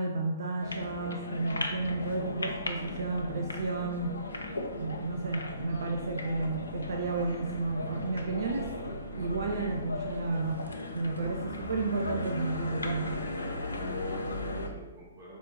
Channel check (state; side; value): inverted; both; correlation -0.66